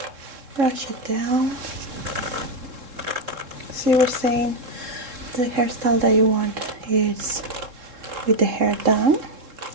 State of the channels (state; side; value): late; left; 3.7 ms